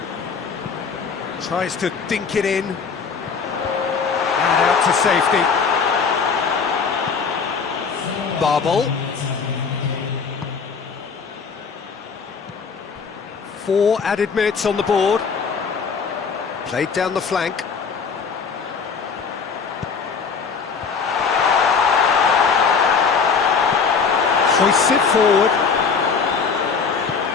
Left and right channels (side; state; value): right; quieter; 5.6 dB